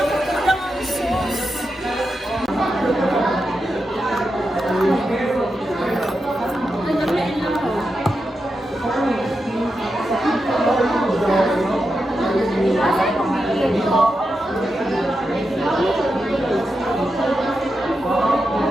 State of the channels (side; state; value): both; normal; correlation 0.88